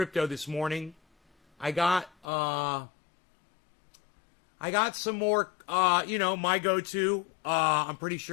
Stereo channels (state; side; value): drops out; right; at 2.2 s